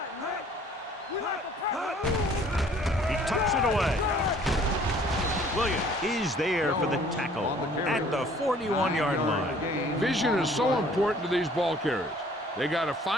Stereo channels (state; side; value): normal; both; correlation 0.56